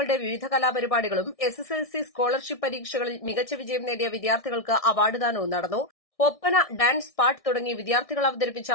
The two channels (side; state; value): right; late; 1.6 ms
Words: വിവിധ കലാപരിപാടികളും SSLC സ്കോളർഷിപ്പ് പരീക്ഷകളിൽ മികച്ച വിജയം നേടിയ വിദ്യാർത്ഥികൾക്ക് അവാർഡ് ദാനവും നടന്നു. ഒപ്പന, ഡാൻസ്, പാട്ട് തുടങ്ങി വിദ്യാർത്ഥികൾ അവതരിപ്പിച്ച